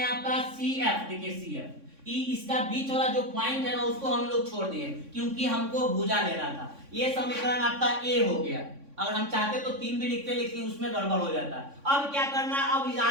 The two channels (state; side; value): late; left; 3.6 ms